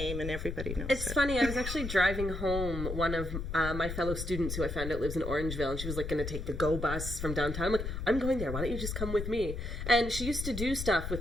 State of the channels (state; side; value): noise; left; rumble, 5 dB below the sound